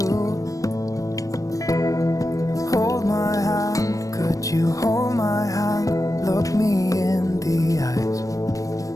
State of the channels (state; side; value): late; right; 0.16 ms